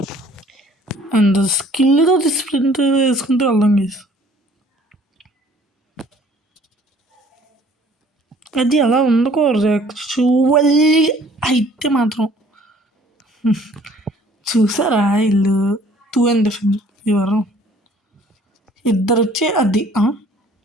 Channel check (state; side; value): normal; both; correlation 0.55